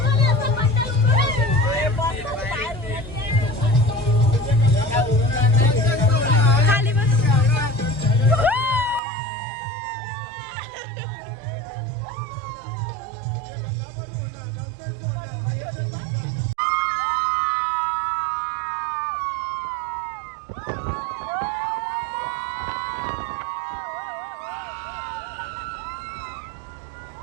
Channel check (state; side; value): drops out; left; at 9.0 s